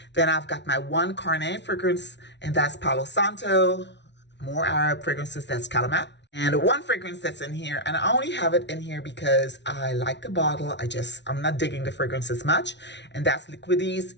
Then I've got my one Carnet fragrance, and that's Palo Santo. More Arab fragrances, that's Calamat. And one fragrance that's in here, and I only have it in here because I like the bottle. I'm not digging the fragrance as much. And that's Liquidis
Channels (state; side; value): late; right; 0.51 ms